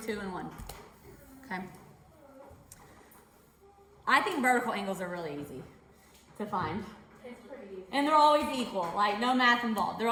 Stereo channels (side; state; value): both; identical; correlation 1.00